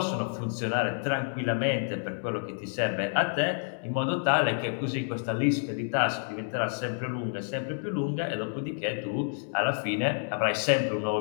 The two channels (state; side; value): silent; right; digital silence